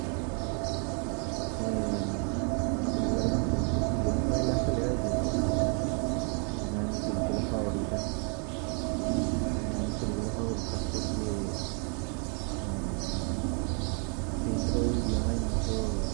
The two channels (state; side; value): quieter; left; 39.4 dB